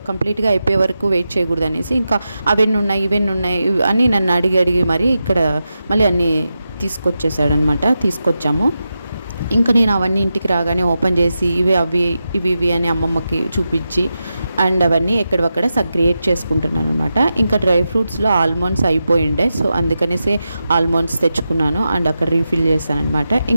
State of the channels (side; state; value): both; inverted; correlation -0.90